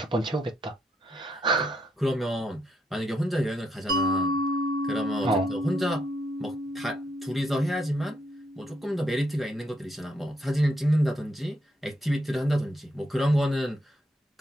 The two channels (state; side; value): normal; both; correlation 0.77